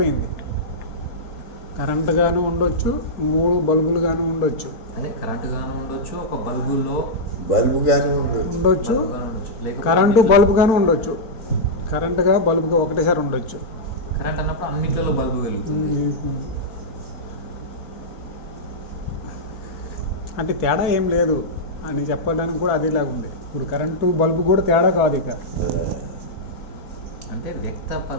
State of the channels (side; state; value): right; late; 4.3 ms